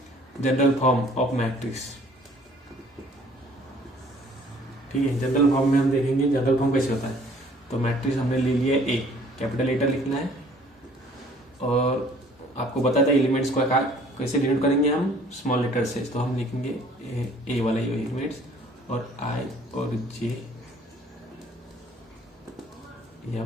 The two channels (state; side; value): normal; both; correlation 0.56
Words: जनरल फॉर्म ऑफ मैट्रिक्स। ठीक है, जनरल फॉर्म में हम देखेंगे जनरल फॉर्म कैसे होता है। तो मैट्रिक्स हमने ले लिया ए, कैपिटल लेटर लिखना है, और आपको बताया था एलिमेंट्स को कैसे डिनोट करेंगे हम, स्मॉल लेटर से। तो हम लिखेंगे ए वाला एलिमेंट्स, और आई और जे